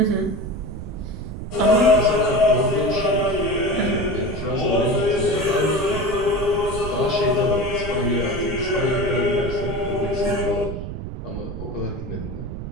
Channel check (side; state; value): right; noise; rumble, 8 dB below the sound